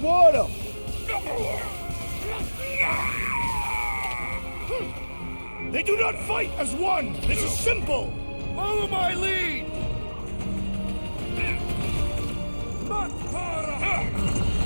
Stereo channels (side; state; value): both; inverted; correlation -1.00